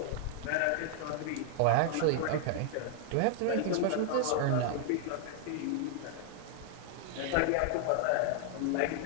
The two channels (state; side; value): different; both; correlation 0.00